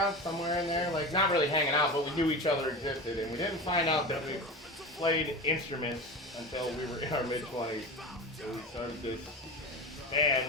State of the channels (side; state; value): both; normal; correlation 0.28